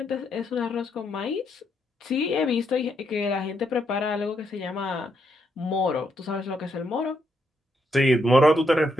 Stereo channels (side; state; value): both; normal; correlation 0.78